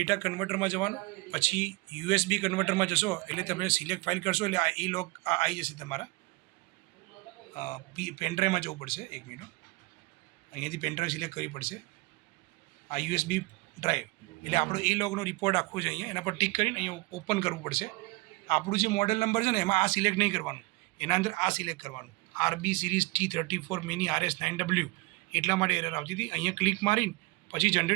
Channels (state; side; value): quieter; left; 23.8 dB